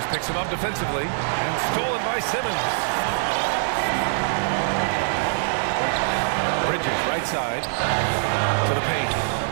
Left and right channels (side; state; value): left; silent; 63 dB below the other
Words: picks him up defensively. And stolen by Simmons. Bridges, right side, to the paint.